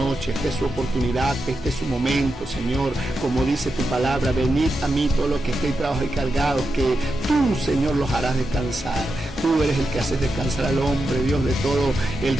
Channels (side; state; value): both; normal; correlation 0.88